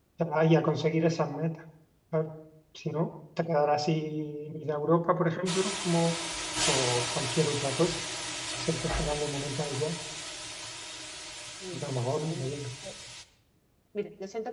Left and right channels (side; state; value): both; identical; correlation 1.00